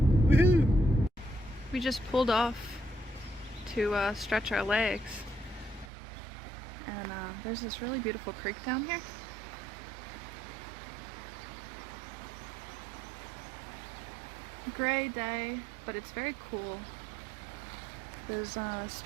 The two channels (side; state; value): left; drops out; at 5.9 s